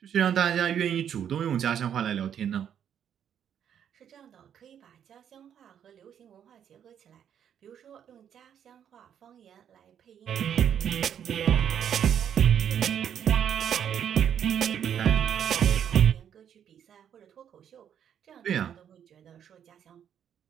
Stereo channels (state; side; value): quieter; left; 9.0 dB